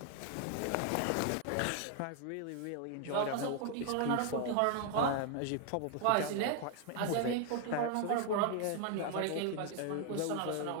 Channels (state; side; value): different; both; correlation 0.00